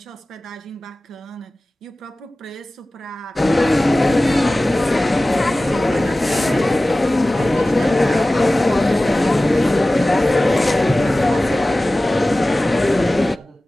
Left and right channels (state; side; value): normal; both; correlation 0.97